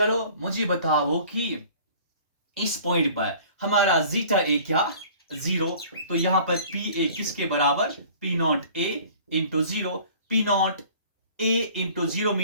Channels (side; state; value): both; inverted; correlation -0.49